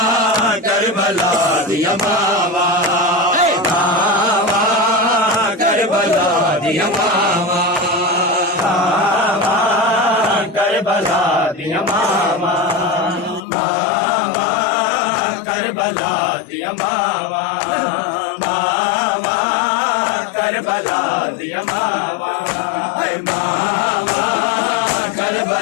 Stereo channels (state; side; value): drops out; right; at 13.4 s